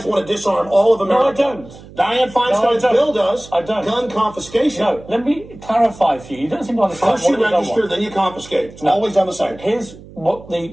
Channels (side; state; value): right; noise; hum, 19 dB below the sound